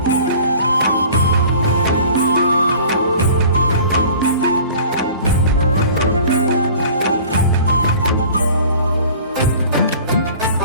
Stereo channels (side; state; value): both; inverted; correlation -0.46